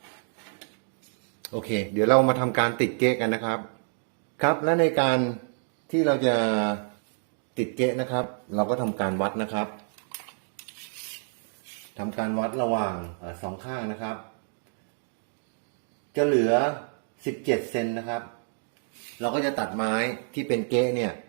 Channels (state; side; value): silent; left; digital silence